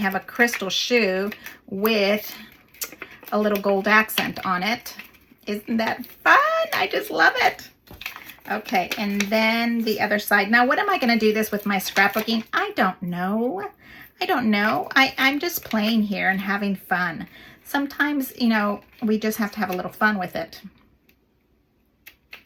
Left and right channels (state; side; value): identical; both; correlation 1.00